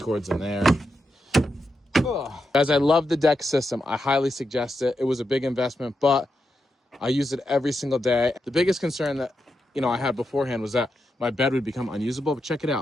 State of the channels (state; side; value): normal; both; correlation 0.86